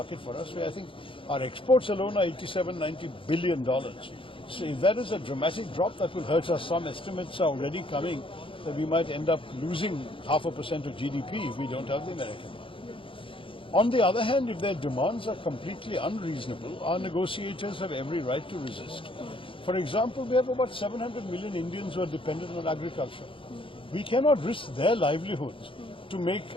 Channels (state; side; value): late; right; 0.25 ms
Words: for us. I think our exports alone are $87-90 billion. So if that is a dramatic drop, that will hurt us. Some estimates are already coming that we might end up losing 0.5% of GDP if we don't have the American market. On the other hand, if their demands are completely unreasonable, our negotiators have every right to resist. For example, we have about 700 million Indians who are dependent on agriculture. We cannot risk their livelihoods to make